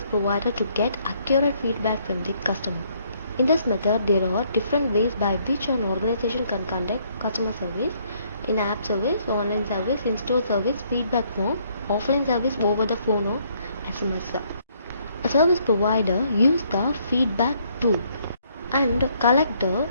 provider to get accurate feedback from the customer. In this method, there are different ways by which an organization can conduct customer service: in-app service, online service, in-store service, feedback form, offline service over the phone or SMS. A service provider uses the feedback tool and collect the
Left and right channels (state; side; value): inverted; both; correlation -0.68